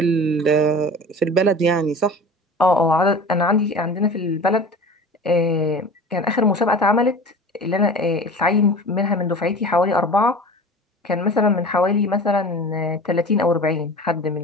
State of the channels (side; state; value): both; normal; correlation 0.37